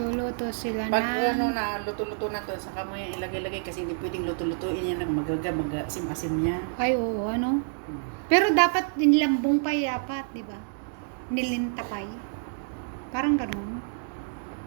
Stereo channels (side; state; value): left; silent; digital silence